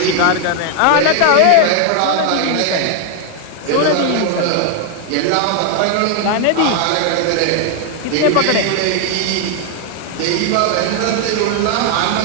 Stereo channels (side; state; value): both; different; correlation 0.00